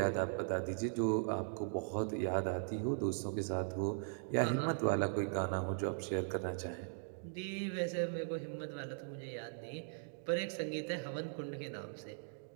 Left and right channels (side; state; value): left; silent; digital silence